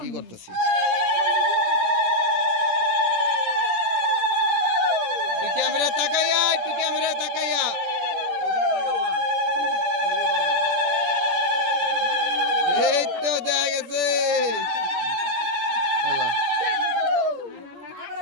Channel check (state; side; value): late; left; 17 ms